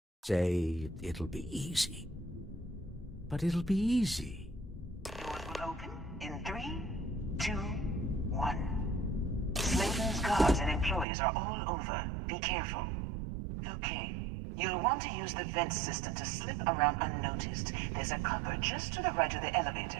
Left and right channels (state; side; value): drops out; left; at 11.1 s